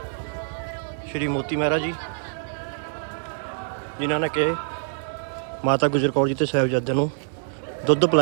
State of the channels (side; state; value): left; silent; digital silence